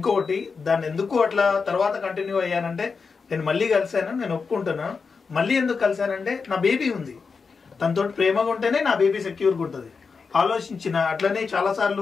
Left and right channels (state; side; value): quieter; right; 5.1 dB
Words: దాన్ని ఎందుకు అట్లా తర్వాత కంటిన్యూ అయ్యానంటే, నేను మళ్ళీ కలిశాను, నేను ఒప్పుకుంటున్నాను. మళ్ళీ ఎందుకు కలిశానంటే నా బేబీ ఉంది, తనతో ప్రేమగా ఉంటేనే నా బేబీ సెక్యూర్గా ఉంటుంది ఆలోచించిన. అట్లనే చాలా